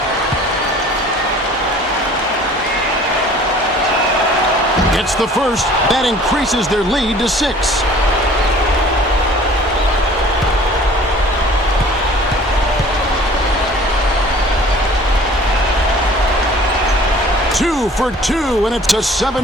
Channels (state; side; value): normal; both; correlation 0.49